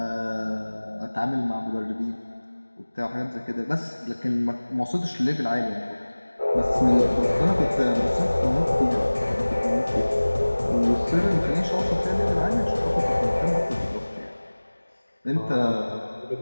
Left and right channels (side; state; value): both; inverted; correlation -1.00